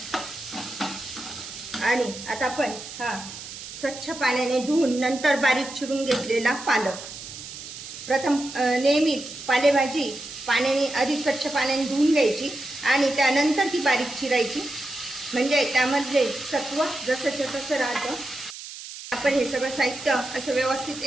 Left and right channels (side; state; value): right; noise; hiss, 12 dB below the sound